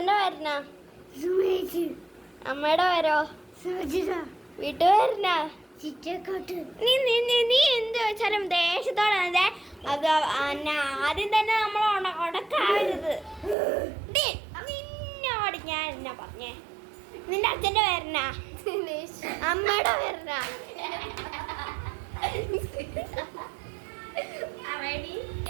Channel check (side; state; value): left; drops out; at 13.6 s